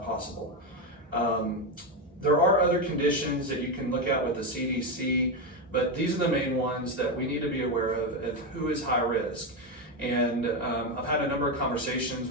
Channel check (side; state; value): both; normal; correlation 0.10